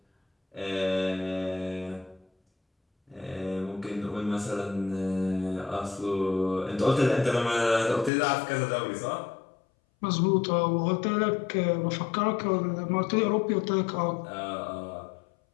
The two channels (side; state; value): right; drops out; at 8.1 s